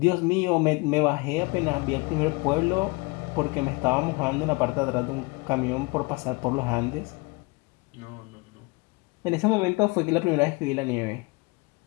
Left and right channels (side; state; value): right; quieter; 26.1 dB